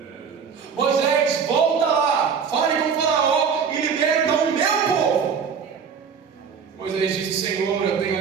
Moisés, volta lá, fale com o Faraó e liberta o meu povo. Moisés disse: Senhor, eu tenho a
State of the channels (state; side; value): quieter; left; 6.4 dB